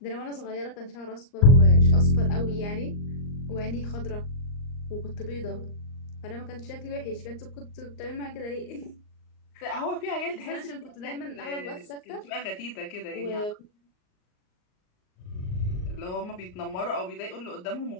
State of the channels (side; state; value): right; late; 38 ms